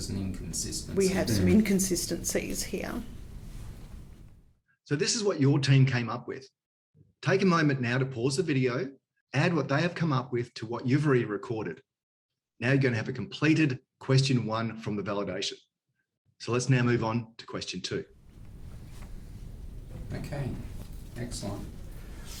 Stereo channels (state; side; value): identical; both; correlation 1.00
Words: an inconsistency. We have some inconsistencies here. So this is what your team came up with. Take a moment now to pause the video, add what they have come up with to what you've already recorded. Now you're going to have a completed question 1 from the validation. So let's now move on to question 2. Okay, excellent.